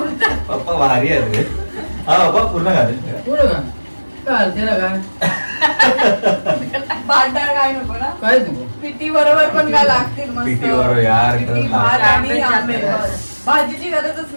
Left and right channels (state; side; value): inverted; both; correlation -1.00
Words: पप्पा भारी आहे रे हा पप्पा पूर्ण घालेल पुढं का काय त्याला काय भांडार काय नको ना काहीच नको पिठी बरोबर पण काय लागतील मस्त पिठी बरोबर यार, पिठी, खरंच भात आणि आंबे आंबे जास्त. बस. भाजीची गरजच